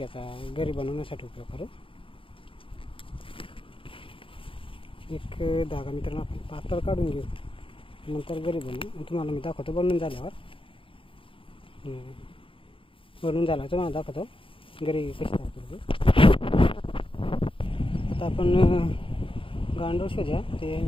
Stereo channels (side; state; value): right; late; 0.26 ms